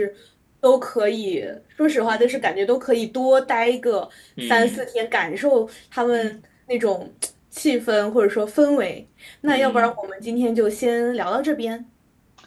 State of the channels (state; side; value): identical; both; correlation 1.00